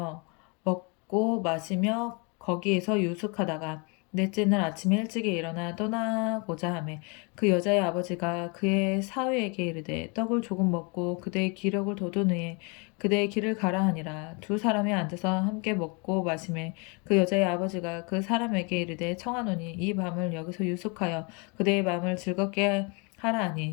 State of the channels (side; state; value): right; quieter; 32.4 dB